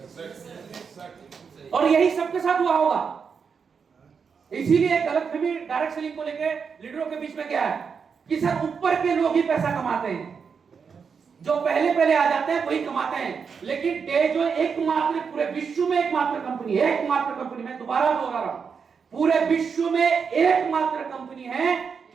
और यही सबके साथ हुआ होगा। इसीलिए गलतफहमी डायरेक्ट सेलिंग को लेके लीडरों के बीच में क्या है कि सर ऊपर के लोग ही पैसा कमाते हैं, जो पहले पहले आ जाते हैं वही कमाते हैं। लेकिन डेजो एकमात्र पूरे विश्व में एकमात्र कंपनी है, एकमात्र कंपनी, मैं दोबारा दोहरा रहा हूं, पूरे विश्व में एकमात्र कंपनी है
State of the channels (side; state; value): left; quieter; 6.0 dB